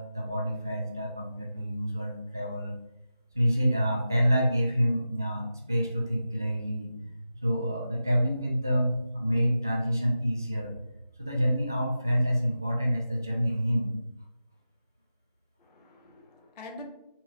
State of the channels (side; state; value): both; inverted; correlation -0.92